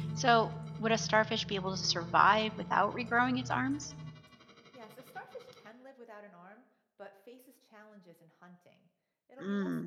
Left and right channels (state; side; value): identical; both; correlation 1.00